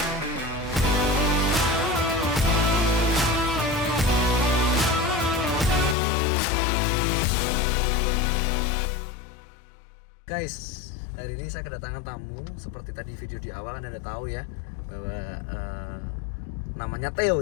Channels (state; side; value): drops out; right; at 6.0 s